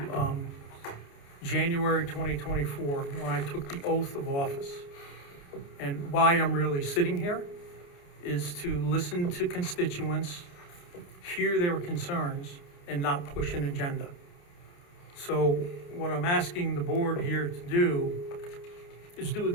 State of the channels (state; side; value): late; right; 29 ms